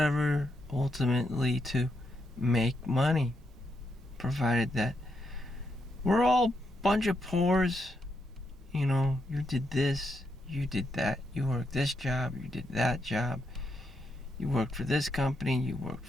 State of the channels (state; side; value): normal; both; correlation 0.80